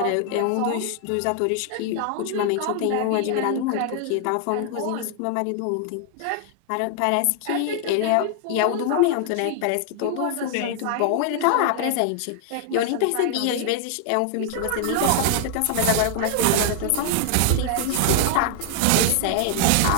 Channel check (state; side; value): different; both; correlation 0.00